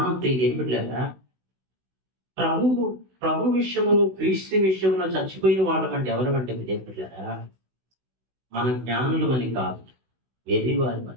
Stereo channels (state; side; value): late; left; 16 ms